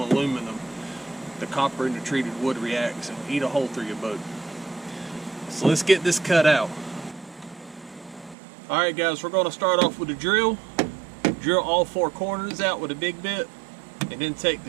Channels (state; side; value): drops out; left; at 8.3 s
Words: aluminum. The copper in the treated wood reacts and eat a hole through your boat. So let's get this cut out. Alright guys, we're going to start off with a drill. Drill all 4 corners out with a big bit. And then take